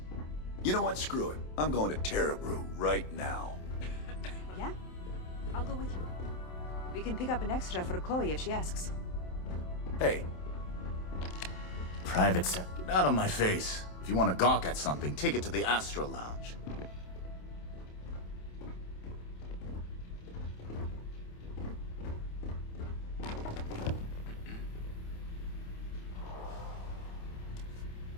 You know what? Screw it. I'm going to Terrabrew right now. Yeah? I'll go with you. We can pick up an extra for Chloe if she asks. Hey. Private Get out of my face. If you want to gawk at something, take it to the Astro Lounge.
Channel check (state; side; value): late; right; 27 ms